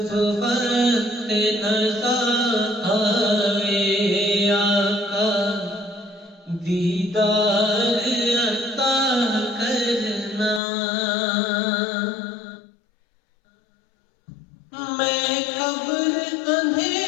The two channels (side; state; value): right; drops out; at 10.6 s